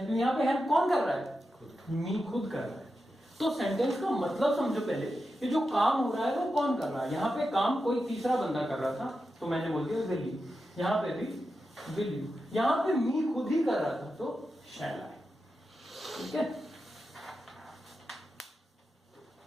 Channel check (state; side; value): normal; both; correlation 0.90